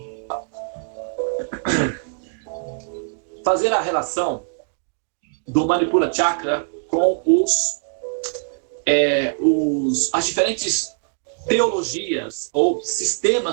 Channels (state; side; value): silent; left; digital silence